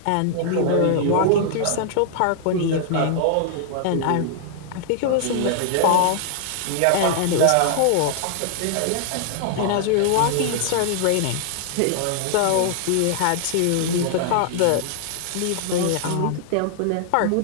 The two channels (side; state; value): both; different; correlation -0.01